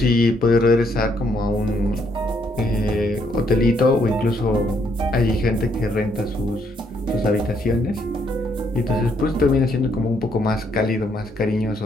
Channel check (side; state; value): both; normal; correlation 0.72